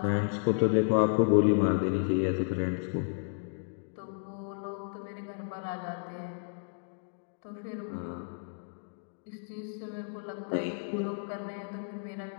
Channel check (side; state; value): right; silent; digital silence